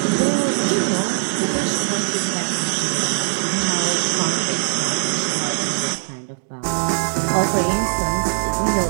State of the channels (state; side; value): silent; left; 61 dB below the other